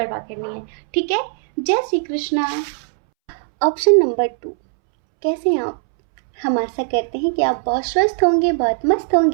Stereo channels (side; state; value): left; silent; 66 dB below the other